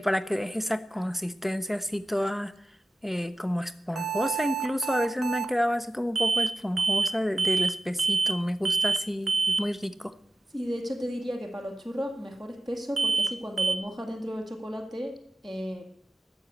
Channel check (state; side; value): normal; both; correlation 0.93